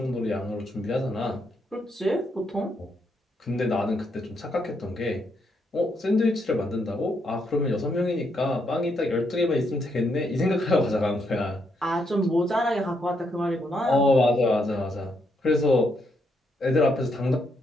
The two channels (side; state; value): both; normal; correlation 0.77